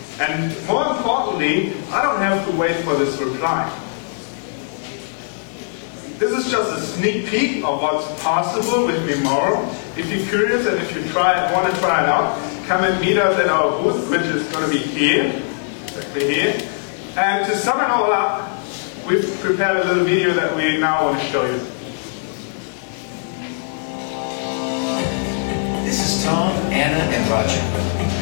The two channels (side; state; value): right; silent; digital silence